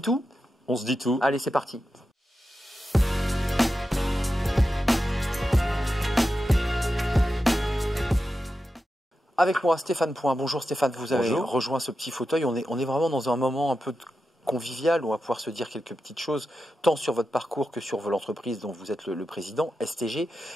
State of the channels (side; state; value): both; normal; correlation 0.90